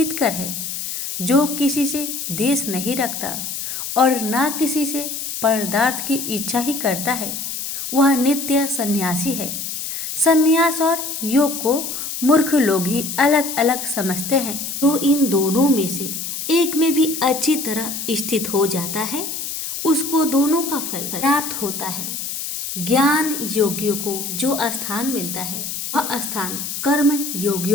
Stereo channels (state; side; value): noise; left; hiss, 5 dB below the sound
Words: है। जो किसी से द्वेष नहीं रखता और ना किसी से पदार्थ की इच्छा ही करता है, वह नित्य सन्यासी है। सन्यास और योग को मूर्ख लोग ही अलग अलग समझते हैं। जो इन दोनों में से एक में भी अच्छी तरह स्थित हो जाता है, उसको दोनों का फल प्राप्त होता है। ज्ञान योगियों को जो स्थान मिलता है, वह स्थान कर्म